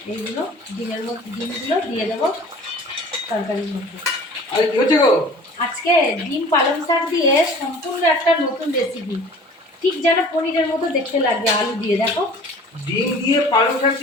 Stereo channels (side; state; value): both; normal; correlation 0.45